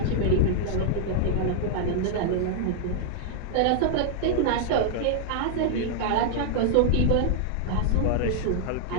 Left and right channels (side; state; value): both; different; correlation 0.00